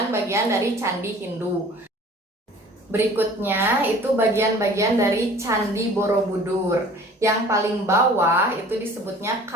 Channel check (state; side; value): normal; both; correlation 0.48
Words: dari candi Hindu. Berikutnya itu bagian-bagian dari Candi Borobudur. Yang paling bawah itu disebutnya